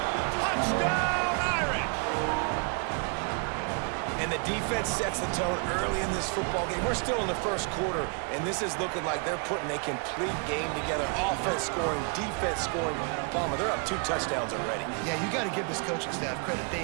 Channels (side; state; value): left; quieter; 37.4 dB